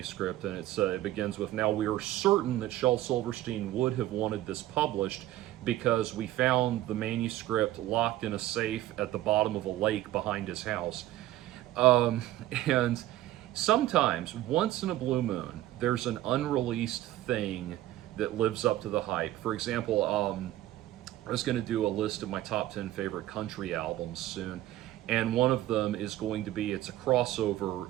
and it begins with, "Now we are certain that Shel Silverstein would have wanted this published because we found the manuscript locked in a safe at the bottom of a lake behind his house." And sometimes, once in a blue moon, there's an unreleased thing that lives up to the hype. For example, I was going to do a list of my top 10 favorite country albums soon, and one of them is going to be, it's a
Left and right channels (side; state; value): left; quieter; 14.8 dB